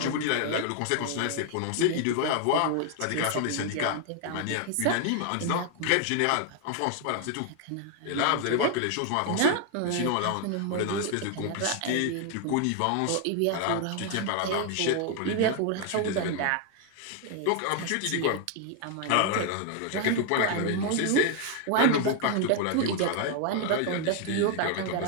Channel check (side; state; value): both; different; correlation 0.00